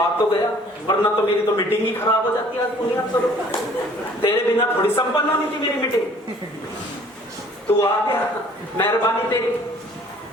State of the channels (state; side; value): normal; both; correlation 0.54